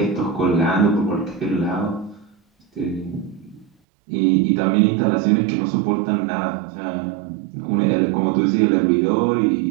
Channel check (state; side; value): drops out; left; at 3.7 s